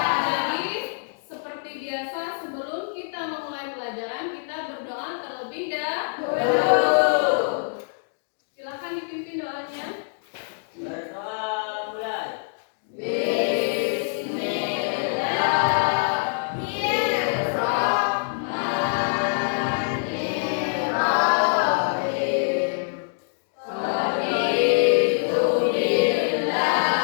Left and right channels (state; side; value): silent; right; digital silence